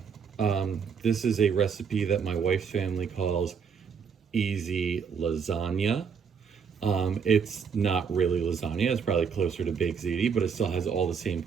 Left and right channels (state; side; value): quieter; left; 6.4 dB